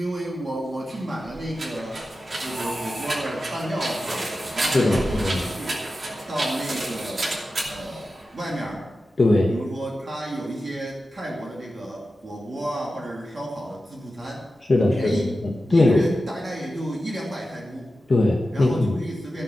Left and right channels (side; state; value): both; normal; correlation 0.93